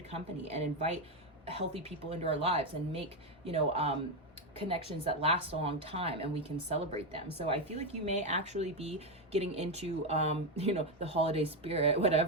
company and invite healthy people into our lives and make, you know, connections that last a long time, and we can celebrate them. So I feel like you may actually be getting into, you know, the holiday spirit,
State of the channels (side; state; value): both; normal; correlation 0.08